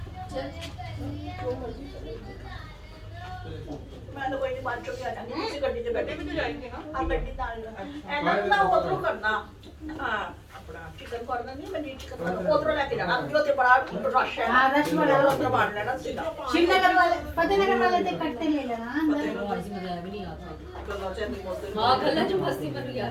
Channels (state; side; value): identical; both; correlation 1.00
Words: मैं तो कोई नहीं बात चुकी आ जाऊंगी किसी गड्डी से बैठे भी तो जाएंगे ना आप गड्डी डाल लो एंड ना उधर करना हां अपना चिकन कॉर्नर नहीं मैं चिकन उधर लेके जाना जो ते बड़ा रश है हाँ, रश वाला उधर बांध लेना सीधा शिवनगर वाले फतेहनगर वाले से कट्टे ले लेना अंदर मजा भी नहीं आता गल्ला से नहीं बोलते हाँ गला जो मस्ती कर रही है